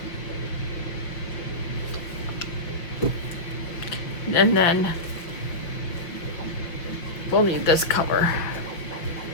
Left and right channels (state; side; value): late; right; 5.7 ms